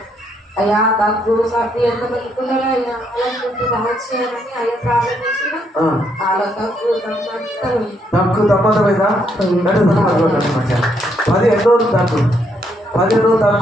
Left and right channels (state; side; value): normal; both; correlation 0.74